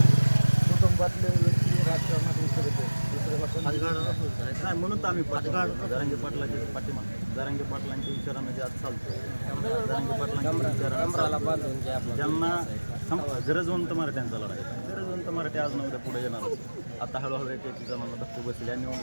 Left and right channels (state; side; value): inverted; both; correlation -1.00